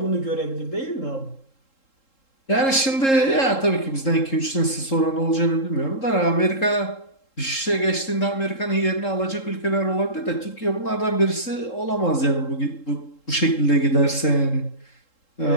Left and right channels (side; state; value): right; late; 3.7 ms